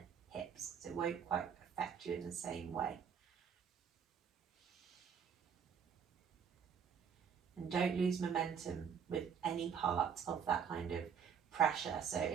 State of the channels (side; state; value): left; quieter; 7.2 dB